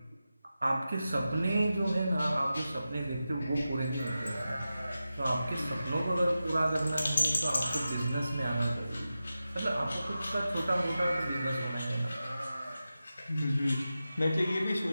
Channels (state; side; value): inverted; both; correlation -0.92